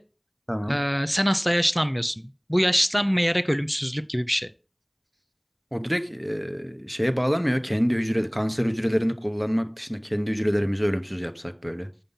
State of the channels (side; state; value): both; identical; correlation 1.00